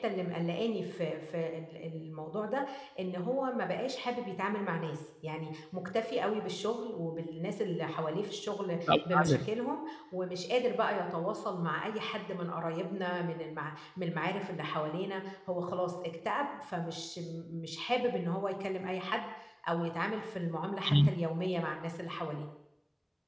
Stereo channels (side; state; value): both; identical; correlation 1.00